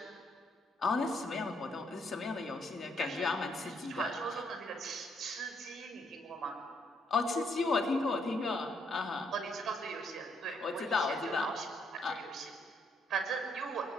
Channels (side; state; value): both; normal; correlation 0.72